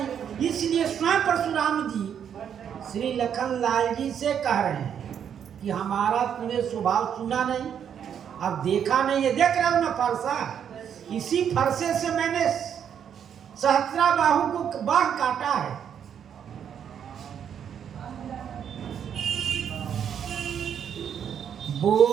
इसलिए स्वयं परशुराम जी श्री लखन लाल जी से कह रहे हैं कि हमारा तूने स्वभाव सुना नहीं, अब देखा नहीं है, देख रहे हो ना फरसा, इसी फरसे से मैंने सहस्रा बाहु को बाह काटा है।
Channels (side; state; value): left; quieter; 8.5 dB